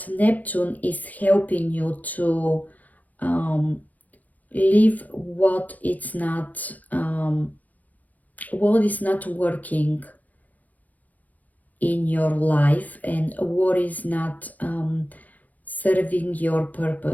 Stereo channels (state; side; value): late; right; 0.077 ms